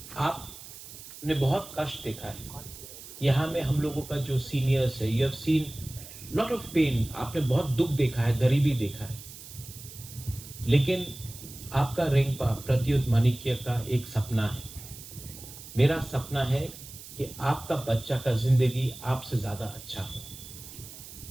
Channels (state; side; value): noise; right; hiss, 15 dB below the sound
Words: आपने बहुत कष्ट देखा है। यहाँ में हम लोगों का जो सीनियर्स है, you have seen lot of pain, आपने बहुत दुख देखा है, गरीबी देखा है। लेकिन आपका रेंगपा प्रत्युत माणिक्य का एक सपना है। मेरा सपना है कि आपका बच्चा का जिंदगी आपसे ज्यादा अच्छा हो।